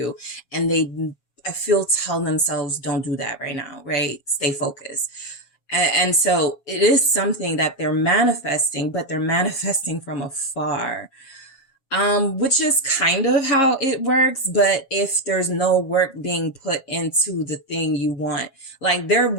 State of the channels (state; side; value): late; right; 7.3 ms